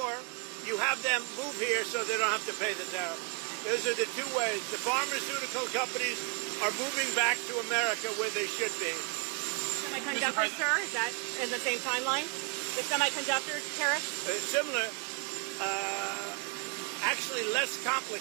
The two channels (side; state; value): left; quieter; 37.8 dB